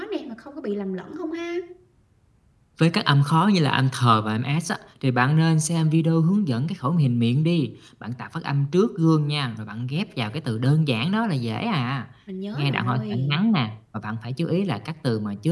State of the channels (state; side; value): identical; both; correlation 1.00